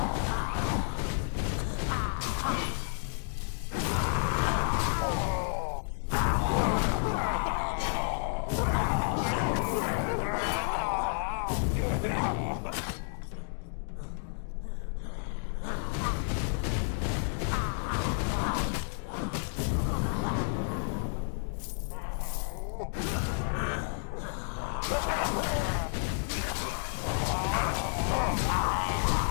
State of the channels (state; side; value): silent; right; digital silence